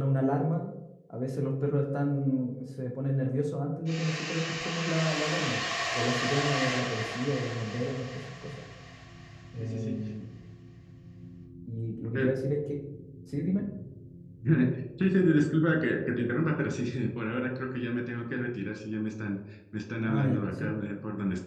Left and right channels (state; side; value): identical; both; correlation 1.00